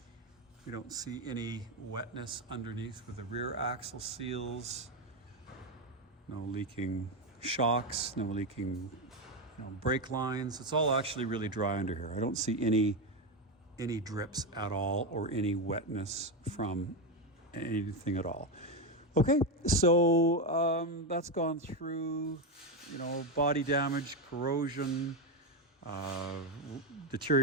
We don't see any wetness underneath with the rear axle seals. no leaking shocks, no leaking brake lines. It's all actually really dry under here. I don't see any drips at all or any wetness from anything at all. Okay, so that's gone through, body damage, corrosion,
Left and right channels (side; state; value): both; normal; correlation 0.10